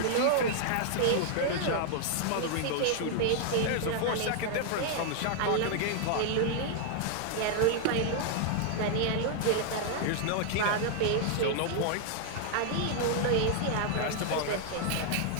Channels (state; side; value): different; both; correlation 0.00